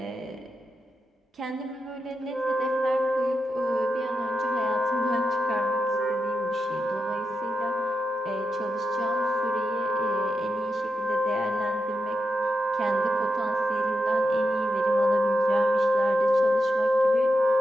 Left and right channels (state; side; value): normal; both; correlation 0.88